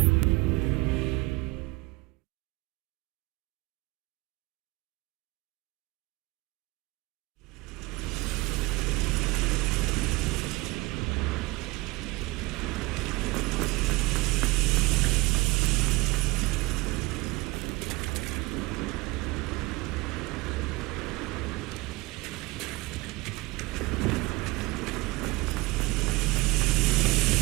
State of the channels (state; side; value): quieter; left; 23.0 dB